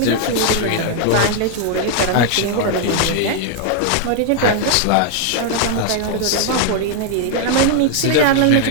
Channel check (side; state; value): both; different; correlation 0.00